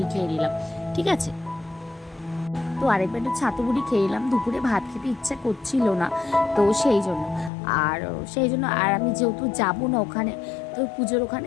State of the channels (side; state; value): right; drops out; at 7.5 s